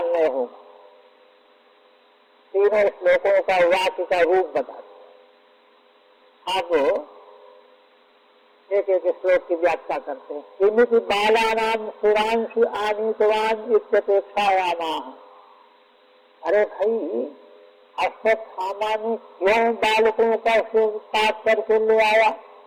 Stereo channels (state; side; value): identical; both; correlation 1.00